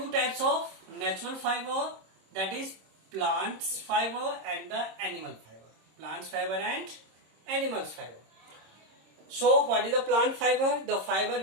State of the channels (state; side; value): late; left; 26 ms